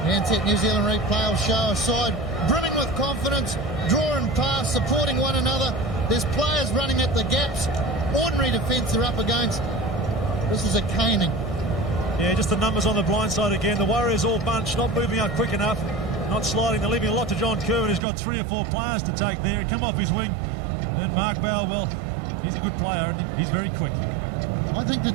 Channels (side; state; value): left; drops out; at 18.0 s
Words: Ansett New Zealand replay will show a side brimming with confidence, drawing past, supporting one another. There's players running at the gaps. Ordinary defence they're up against. This is a caning. Yeah, just the numbers on the blind side again. The Warriors all bunched, not moving up quick enough, not sliding. They're leaving a lot to John Kerwin, who's got 3 or 4 players to take there. He come off his wing. And Mark Bell, well, he's a good player and he's very quick. I think that,